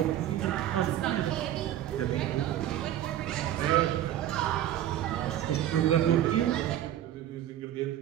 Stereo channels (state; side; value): quieter; left; 12.0 dB